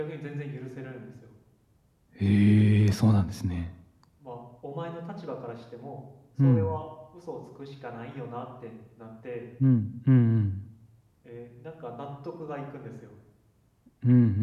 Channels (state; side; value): identical; both; correlation 1.00